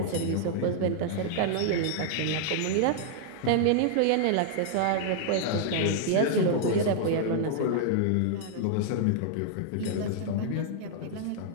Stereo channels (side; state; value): both; different; correlation -0.01